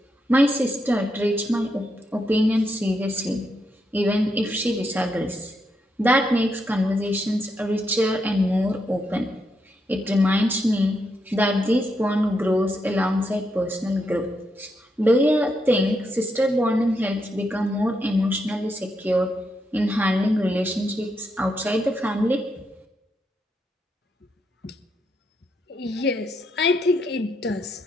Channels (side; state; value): both; normal; correlation 0.81